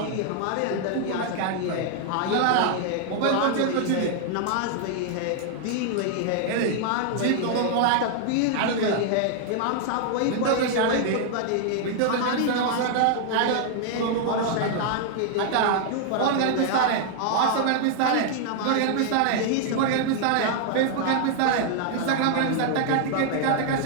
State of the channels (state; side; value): different; both; correlation 0.00